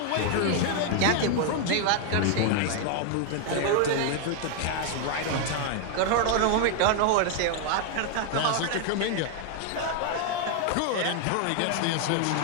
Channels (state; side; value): different; both; correlation 0.00